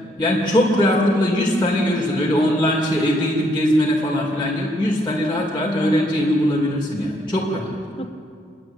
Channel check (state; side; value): normal; both; correlation 0.71